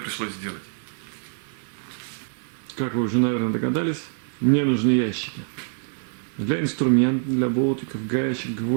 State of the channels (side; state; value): left; silent; digital silence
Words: сделать. Как вы уже, наверное, догадались, мне нужны ящики. Для инструментов, для болтиков, гаечек,